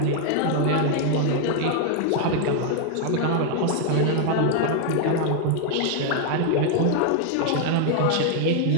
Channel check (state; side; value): different; both; correlation 0.00